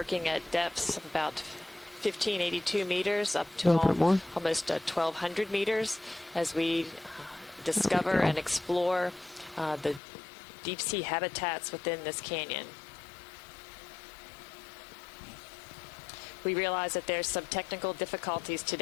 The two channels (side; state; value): right; drops out; at 10.0 s